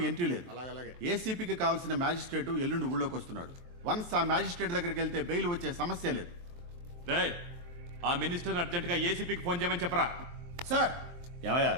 ఎంట్రీ లేదు. ఏసీపీకి కావాల్సిన మ్యాజిస్ట్రేట్ ఎల్లుండి ఊళ్ళోకి వస్తున్నాడు. వన్స్ ఆ మ్యాజిస్ట్రేట్ దగ్గరికి వెళ్తే బెయిల్ వచ్చే సమస్య లేదు. ఆ మినిస్టర్ అర్జెంట్ గా ఏసీపీకి ఫోన్ చేయమని చెప్పరా. సార్, ఏమయ్యా,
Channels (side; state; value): left; late; 23 ms